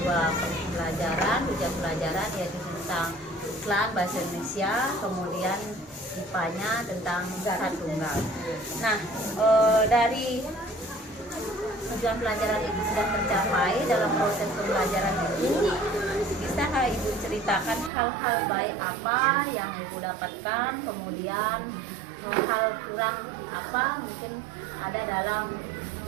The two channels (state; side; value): drops out; left; at 17.9 s